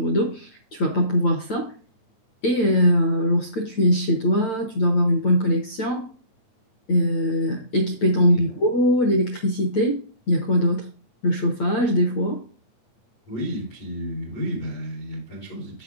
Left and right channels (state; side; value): late; right; 8.9 ms